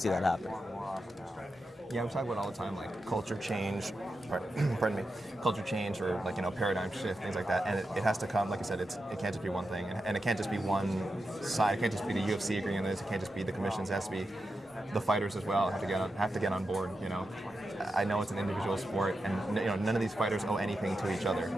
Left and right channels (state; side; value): normal; both; correlation 0.89